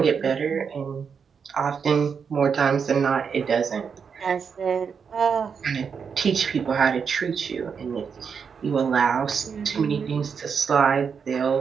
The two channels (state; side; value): quieter; left; 6.3 dB